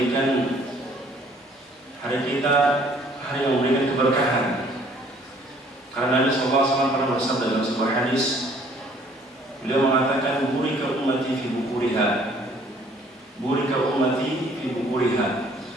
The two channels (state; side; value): normal; both; correlation 0.59